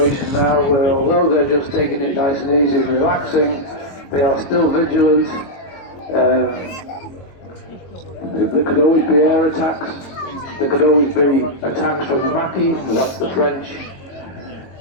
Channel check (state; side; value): late; right; 22 ms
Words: now where, although they're just taking it nice and easy and relaxing, they are still vigilant. There could always be air attacks. There could always be attacks from the Maquis. That's the French.